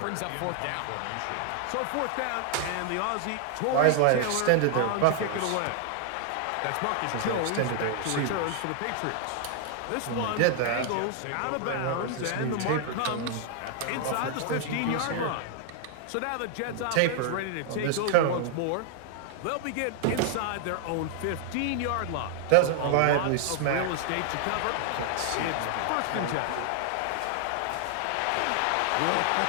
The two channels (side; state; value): both; different; correlation 0.00